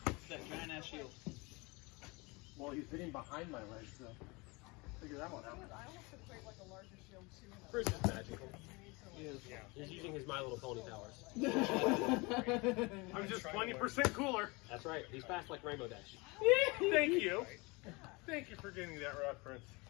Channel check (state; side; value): quieter; right; 26.2 dB